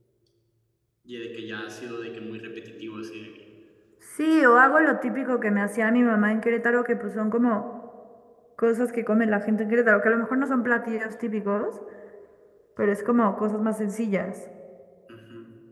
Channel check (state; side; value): identical; both; correlation 1.00